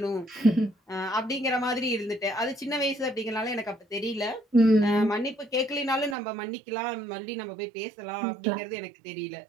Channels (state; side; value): drops out; left; at 6.2 s